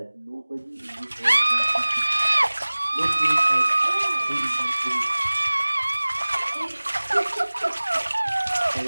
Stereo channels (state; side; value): inverted; both; correlation -1.00